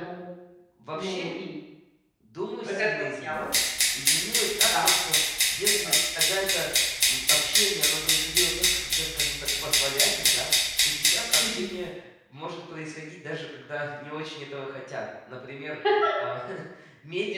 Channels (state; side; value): identical; both; correlation 1.00